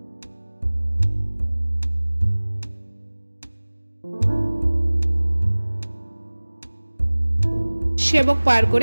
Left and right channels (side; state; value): both; inverted; correlation -1.00